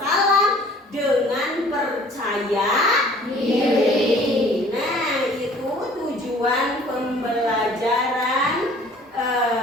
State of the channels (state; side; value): normal; both; correlation 0.52